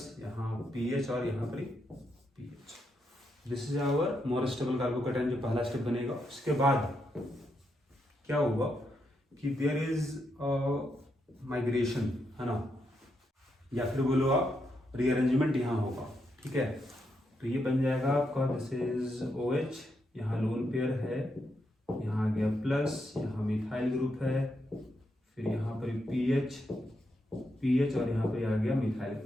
यहाँ PH और यहाँ पर PH। This is our more stable carbocation, जो पहला स्टेप बनेगा। उसके बाद क्या होगा कि देयर इज माइग्रेशन, है ना, या फिर बोलो आप रीअरेंजमेंट यहाँ होगा, ठीक है। तो ये बन जाएगा आपका, दिस इज OH, यहाँ लोन पेयर है, यहाँ आ गया प्लस, यहाँ मिथाइल ग्रुप है, फिर यहाँ पर PH और यहाँ पर आ गया मिथाइल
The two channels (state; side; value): normal; both; correlation 0.81